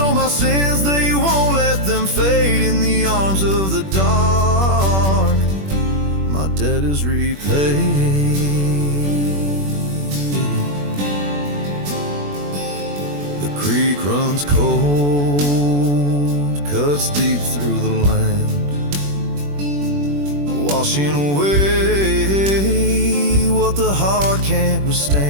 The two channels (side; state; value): left; late; 21 ms